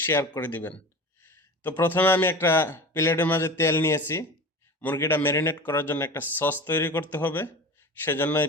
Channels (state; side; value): normal; both; correlation 0.33